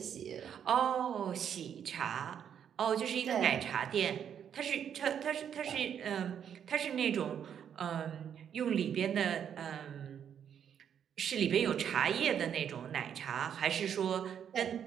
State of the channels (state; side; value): quieter; left; 8.6 dB